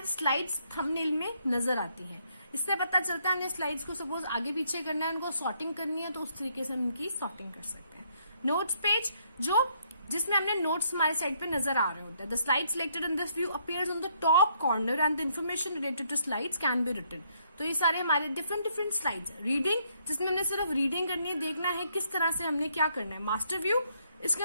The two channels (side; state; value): both; inverted; correlation -0.71